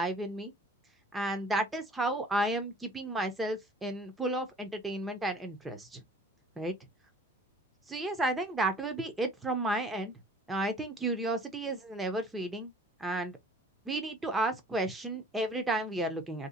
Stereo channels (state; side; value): normal; both; correlation 0.50